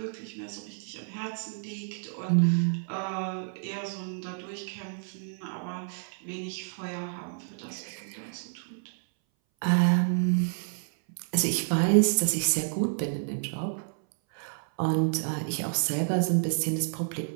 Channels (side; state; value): left; silent; 58 dB below the other